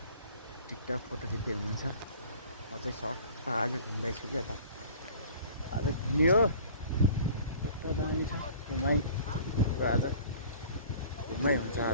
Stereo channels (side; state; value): both; inverted; correlation -0.47